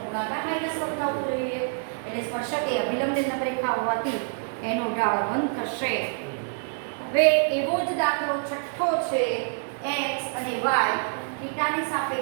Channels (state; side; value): silent; left; 60 dB below the other